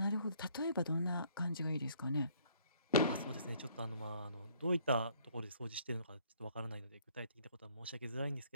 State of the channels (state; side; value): inverted; both; correlation -0.62